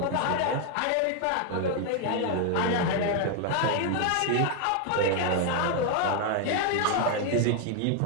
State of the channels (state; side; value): different; both; correlation 0.01